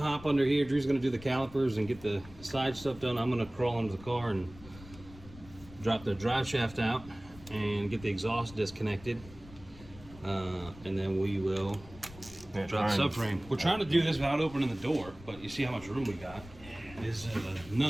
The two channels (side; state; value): left; noise; rumble, 18 dB below the sound